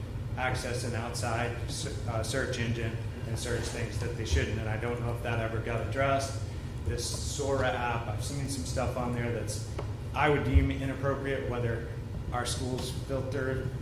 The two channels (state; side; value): identical; both; correlation 1.00